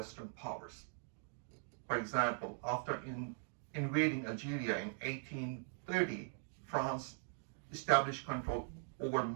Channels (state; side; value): silent; left; 50 dB below the other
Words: powers. For example, after invading Algeria in 1830, France established control over